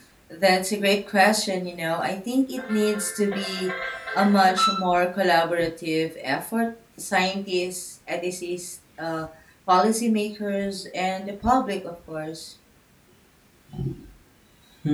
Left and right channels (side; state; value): both; identical; correlation 1.00